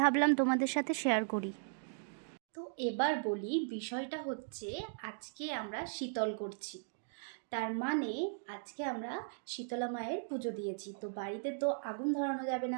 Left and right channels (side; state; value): left; silent; digital silence